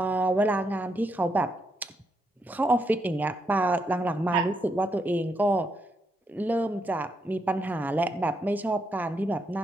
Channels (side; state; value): both; normal; correlation 0.79